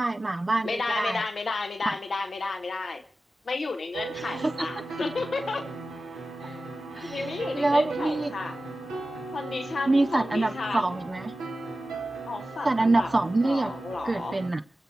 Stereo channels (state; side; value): normal; both; correlation 0.94